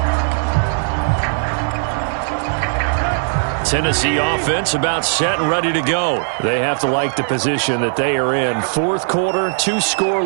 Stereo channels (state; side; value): silent; left; digital silence